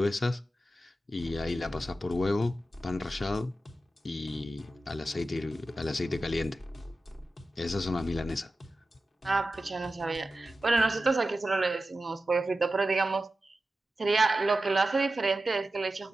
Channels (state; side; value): normal; both; correlation 0.93